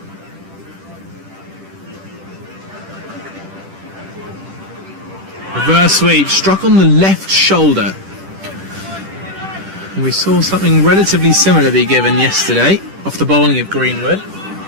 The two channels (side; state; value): left; late; 10 ms